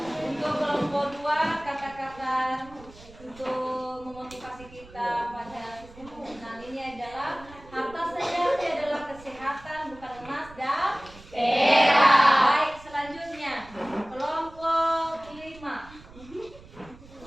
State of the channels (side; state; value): right; noise; rumble, 21 dB below the sound